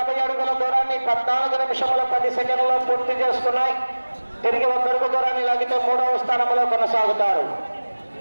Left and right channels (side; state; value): both; inverted; correlation -1.00